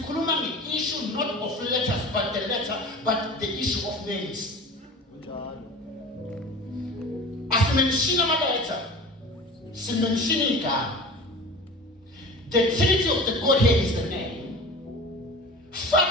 nge-issue not of letters but the issue of names. Asimenshina ama-letter, simenshina igama. The Trinity of the Godhead is the name.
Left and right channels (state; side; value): normal; both; correlation 0.37